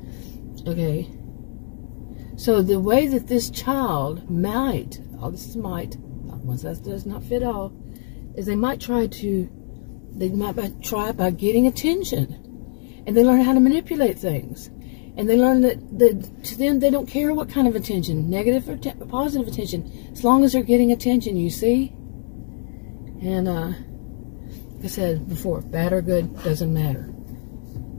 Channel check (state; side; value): silent; right; digital silence